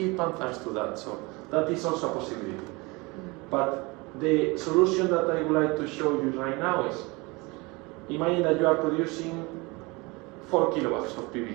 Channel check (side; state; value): left; quieter; 25.6 dB